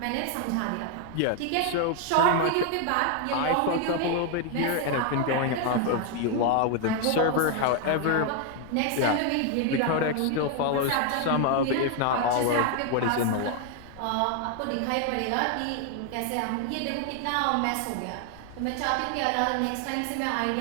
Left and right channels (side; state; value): both; different; correlation 0.01